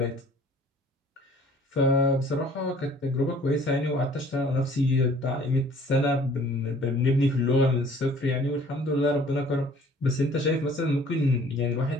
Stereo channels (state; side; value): normal; both; correlation 0.53